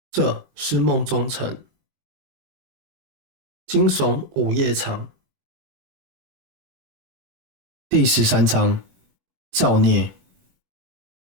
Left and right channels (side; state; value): left; late; 21 ms